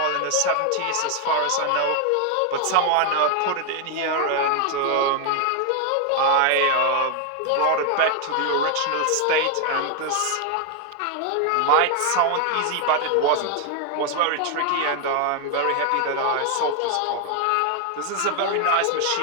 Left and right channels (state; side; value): different; both; correlation 0.00